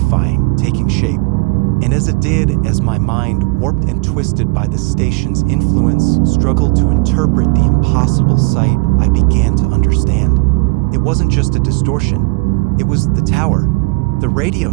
taking shape. And as it did, as my mind, warped and twisted by the station's influence, struggled to interpret the impossible sight, I began to understand. It wasn't just a distortion. It was the tower, the radio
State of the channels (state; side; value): quieter; left; 28.3 dB